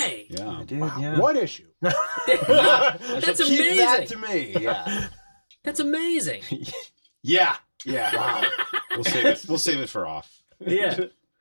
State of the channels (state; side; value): inverted; both; correlation -1.00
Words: Yeah. Dude, Wow. yeah. What issue? That's Keep amazing. that to me, yeah. That's amazing. Yeah. Wow. We'll save it. We'll save it for off. Yeah.